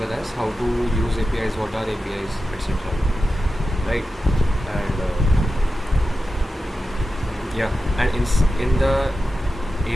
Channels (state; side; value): normal; both; correlation 0.92